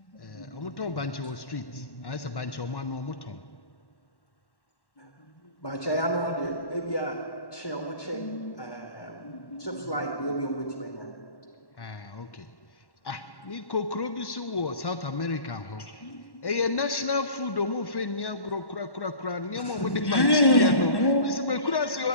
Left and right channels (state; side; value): late; right; 1.1 ms